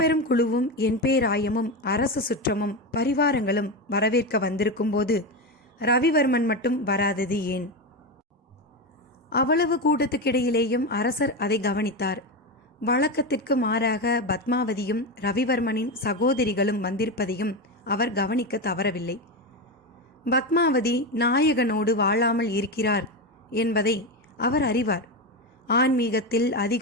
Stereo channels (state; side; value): normal; both; correlation 0.15